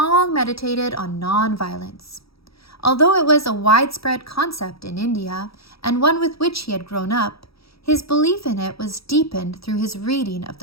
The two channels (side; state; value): right; late; 0.76 ms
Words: meditated on non-violence. Although it was a widespread concept in India and one with which he had grown up, his belief in it was deepened through his reading of